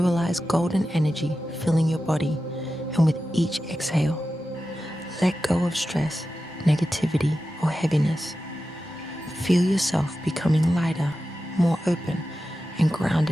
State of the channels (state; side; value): normal; both; correlation 0.92